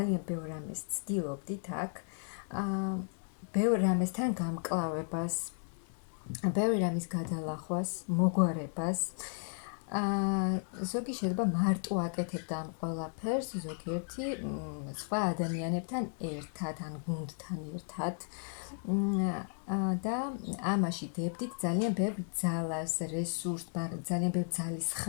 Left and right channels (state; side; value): silent; right; 55 dB below the other